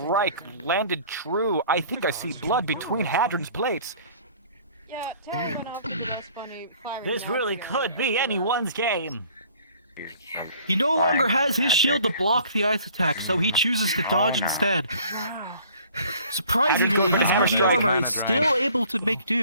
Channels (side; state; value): both; inverted; correlation -0.54